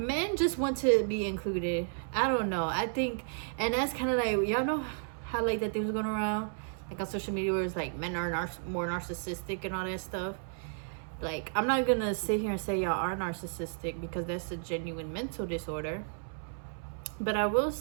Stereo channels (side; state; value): left; silent; 56 dB below the other